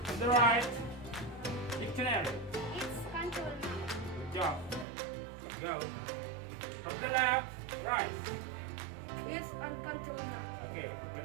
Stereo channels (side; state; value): left; drops out; at 4.9 s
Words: From the right, dictionary. It's countable noun. Good job. Go. From the left, rice. It's uncountable noun. Okay,